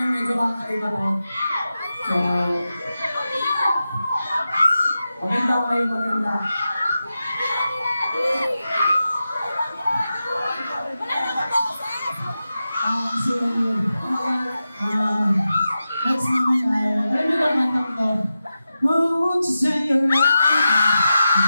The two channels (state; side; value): inverted; both; correlation -0.91